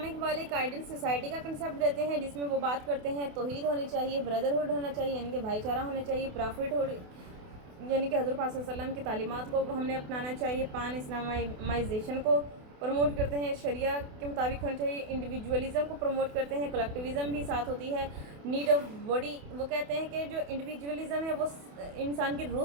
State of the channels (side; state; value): left; late; 28 ms